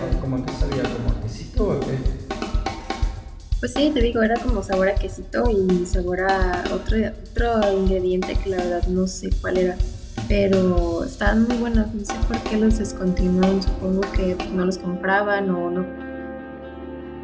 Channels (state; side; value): identical; both; correlation 1.00